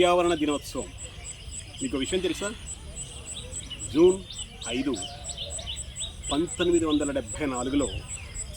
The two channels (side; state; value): both; identical; correlation 1.00